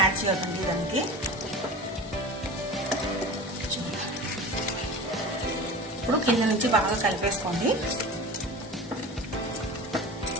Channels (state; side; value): normal; both; correlation 0.34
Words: యాడ్ చేయకండి దానికి. ఇప్పుడు కింద నుంచి బాగా కలిపేసుకోండి.